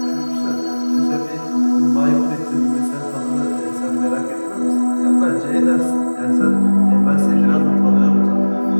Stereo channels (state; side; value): inverted; both; correlation -1.00